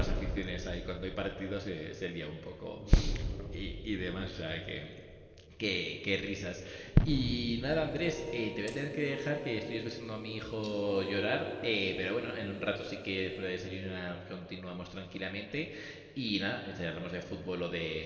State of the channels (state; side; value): identical; both; correlation 1.00